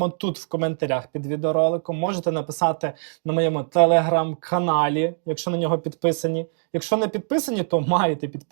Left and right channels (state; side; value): silent; left; digital silence